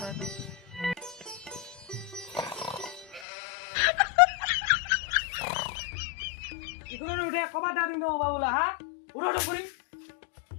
এখনো উঠে কবাটা দিন দেবো বাবুলা, হ্যাঁ উঠো উঠো করি।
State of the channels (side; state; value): right; drops out; at 3.2 s